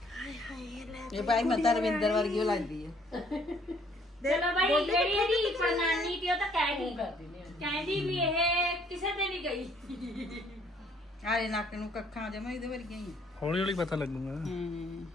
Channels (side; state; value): both; normal; correlation 0.63